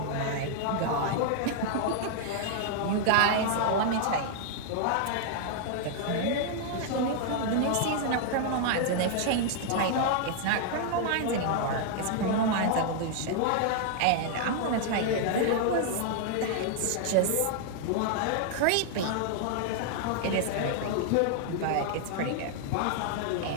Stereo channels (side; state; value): both; different; correlation 0.00